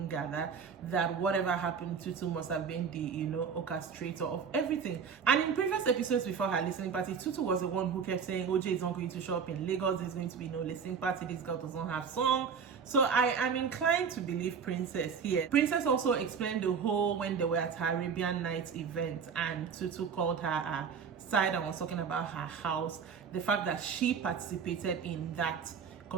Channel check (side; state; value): left; quieter; 6.4 dB